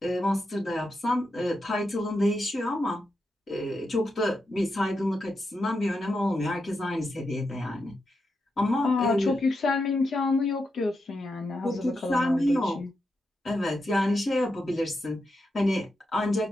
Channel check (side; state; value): both; normal; correlation 0.86